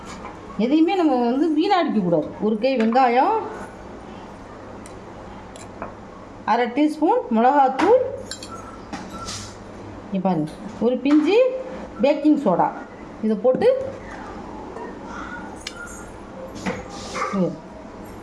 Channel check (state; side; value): identical; both; correlation 1.00